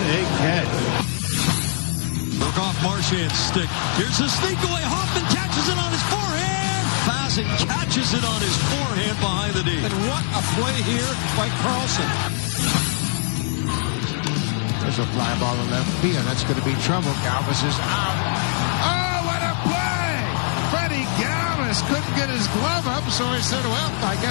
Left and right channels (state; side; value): silent; right; 57 dB below the other